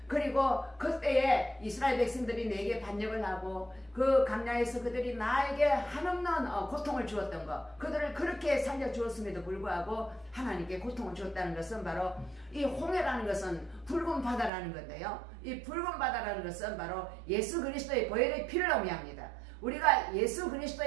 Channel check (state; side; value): drops out; left; at 14.5 s